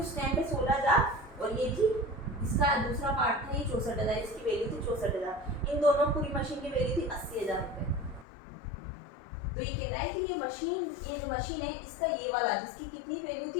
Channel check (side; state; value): right; drops out; at 8.2 s